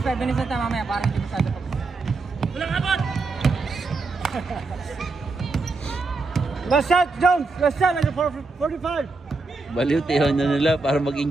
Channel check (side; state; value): left; quieter; 3.7 dB